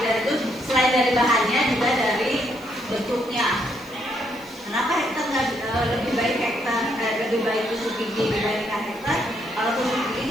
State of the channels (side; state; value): left; noise; hiss, 25 dB below the sound